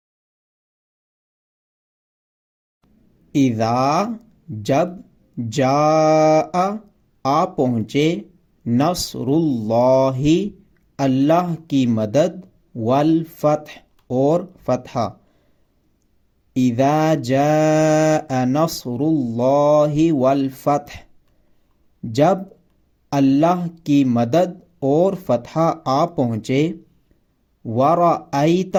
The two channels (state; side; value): identical; both; correlation 1.00